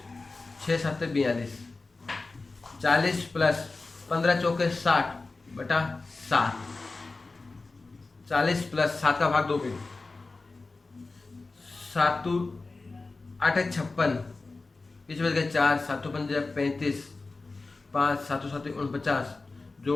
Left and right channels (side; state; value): right; quieter; 3.6 dB